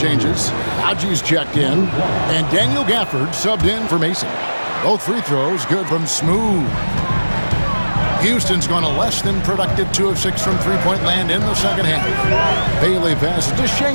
Haji's checked in. And Daniel Gafford subbed in for Mason. Both free throws good from Smooth. Houston's gone a less than productive 2 of 6 from three-point land in the second half. Bailey passes to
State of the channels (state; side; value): inverted; both; correlation -1.00